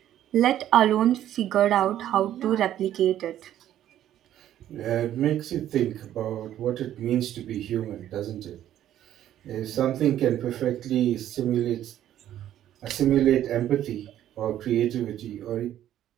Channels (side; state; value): left; quieter; 11.8 dB